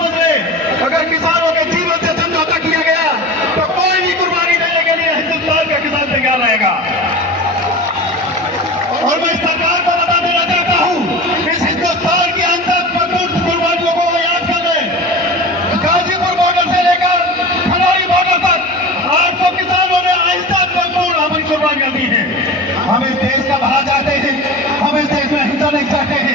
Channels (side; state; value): both; normal; correlation 0.32